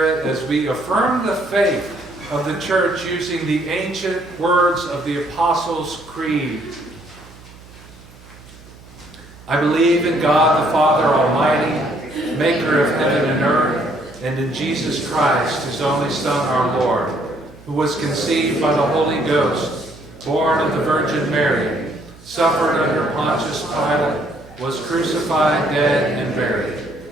as we affirm the faith of the church using the ancient words of the Apostles' Creed. I believe in God the Father Almighty, maker of heaven and earth, and in Jesus Christ, his only Son, our Lord, who was conceived by the Holy Ghost, born of the Virgin Mary, suffered under Pontius Pilate, was crucified, dead, and buried.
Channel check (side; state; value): right; noise; hum, 22 dB below the sound